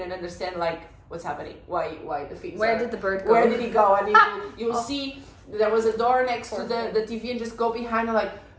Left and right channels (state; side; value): identical; both; correlation 1.00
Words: understand like what's happening, why the things did the bird go? Where did he go? And you'll see there was a door next to the TV, and just go behind and like,